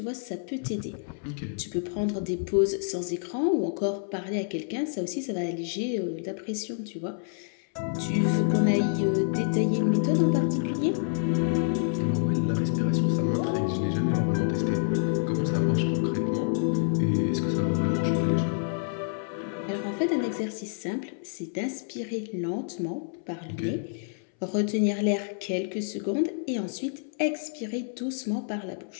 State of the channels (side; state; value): right; silent; 59 dB below the other